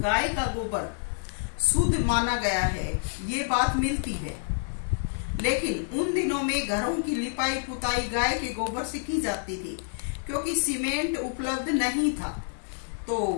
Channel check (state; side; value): silent; right; digital silence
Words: गाय का गोबर शुद्ध माना गया है, ये बात मिलती है। लेकिन उन दिनों में घरों की लिपाई पुताई गाय के गोबर से की जाती थी, क्योंकि सीमेंट उपलब्ध नहीं था। तो